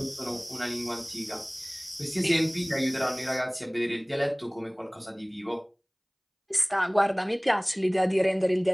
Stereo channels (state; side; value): identical; both; correlation 1.00